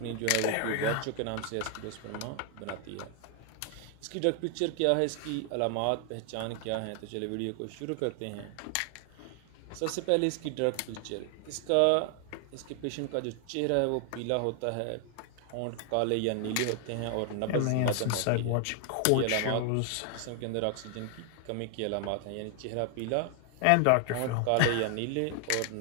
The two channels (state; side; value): different; both; correlation 0.00